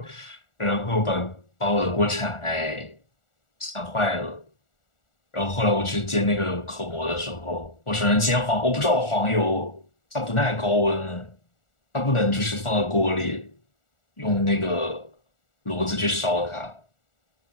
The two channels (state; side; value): late; right; 1.4 ms